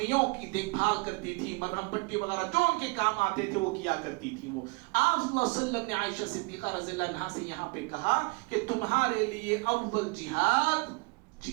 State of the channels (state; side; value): quieter; left; 28.7 dB